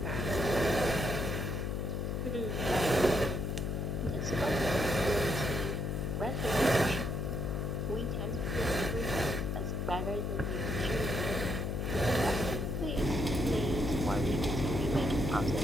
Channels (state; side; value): noise; left; hum, 1 dB below the sound